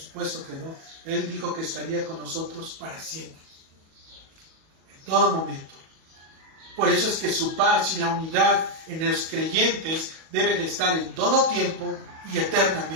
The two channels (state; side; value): late; left; 37 ms